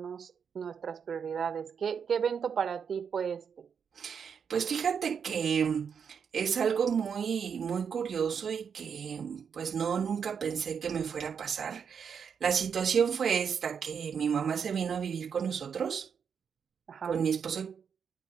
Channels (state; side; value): quieter; left; 6.9 dB